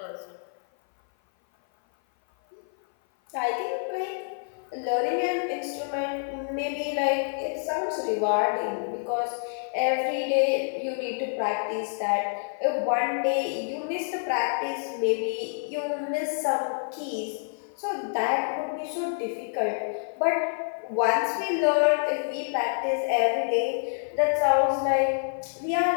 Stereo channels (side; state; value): right; silent; 56 dB below the other